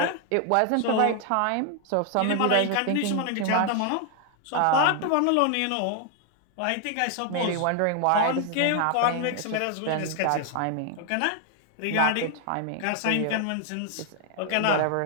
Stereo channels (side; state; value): both; different; correlation 0.00